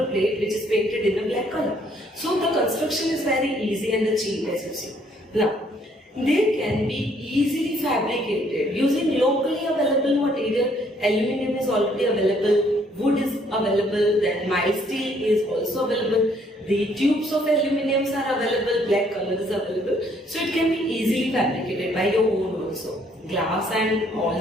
plate, which is painted in a black color. So the construction is very easy and cheap, as you see. Now, they can be easily fabricated using locally available material. Aluminium is already available, wood is available, then mild steel is also available. The tubes of aluminium are available, black color is available. So it can be easily fabricated by your own also. Glass and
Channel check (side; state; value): both; normal; correlation 0.65